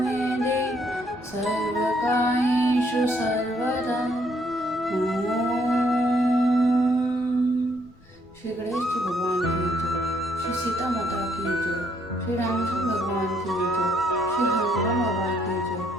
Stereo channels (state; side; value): noise; left; rumble, 27 dB below the sound